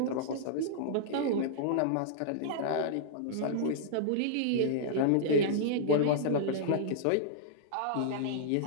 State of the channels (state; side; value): different; both; correlation -0.02